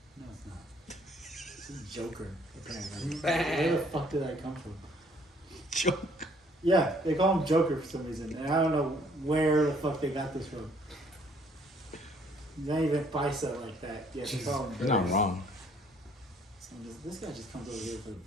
No, it's not. It's a Joker, apparently. Bang. Where the fuck did that come from? Joke. Yeah, they call him Joker for some reason, and I don't know where the fuck they got this from. He's not even bicep like that. Yeah, they call him You're not Joker. wrong, So this guy just comes over here for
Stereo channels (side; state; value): both; normal; correlation 0.62